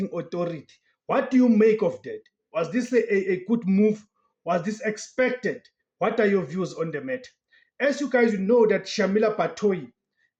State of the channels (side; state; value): both; identical; correlation 1.00